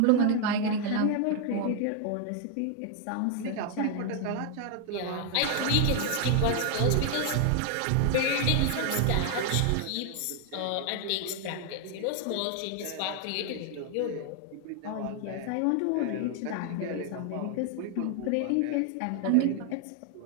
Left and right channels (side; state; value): both; different; correlation 0.00